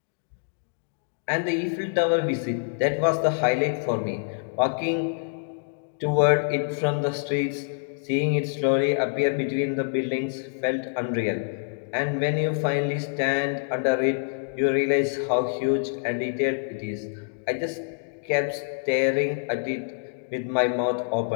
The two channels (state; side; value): silent; right; digital silence